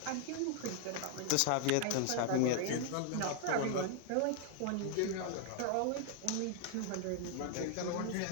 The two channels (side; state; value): both; different; correlation 0.00